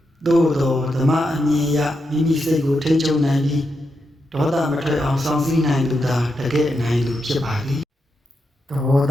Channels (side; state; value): both; normal; correlation 0.85